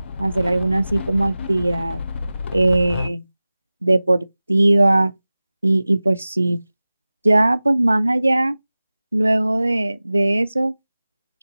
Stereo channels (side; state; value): both; inverted; correlation -0.97